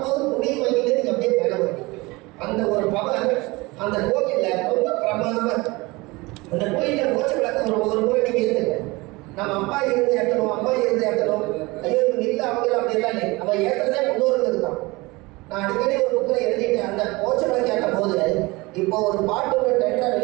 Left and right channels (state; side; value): quieter; left; 23.2 dB